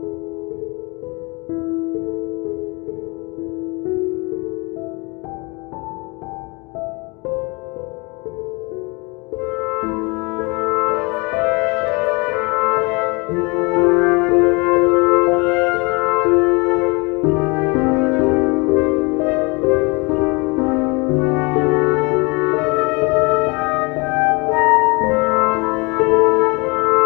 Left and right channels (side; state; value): right; quieter; 28.1 dB